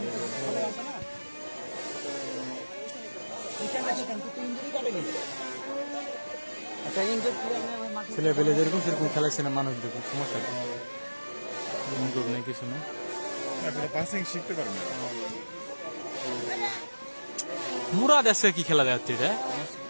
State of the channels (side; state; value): both; inverted; correlation -1.00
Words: খেলা আছে না, ইঞ্জুরি কাটে নি একটা ইঞ্জুরি ছেলে পেলে যেরকম সেরকম খেলাচ্ছে না মানুষ, দেখুন সমস্যা নেই, কিছু নেই। পাসিং শিখতে পারবে না। মুরাদ আছে কি খেলা যাচ্ছে এটা,